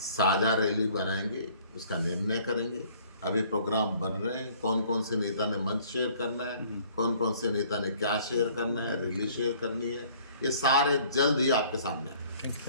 रैली बनाएंगे, उसका निर्णय करेंगे। अभी प्रोग्राम बन रहे हैं, कौन कौन से नेता ने मंच शेयर करना है, कौन कौन से नेता ने क्या शेयर करना है, रैली शेयर करनी है, ये सारे जल्द ही आपके सामने आएंगे।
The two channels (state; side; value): inverted; both; correlation -0.56